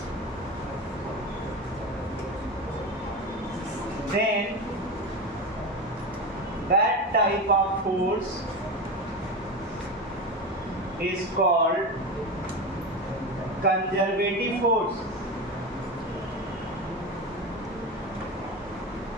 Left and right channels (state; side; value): normal; both; correlation 0.22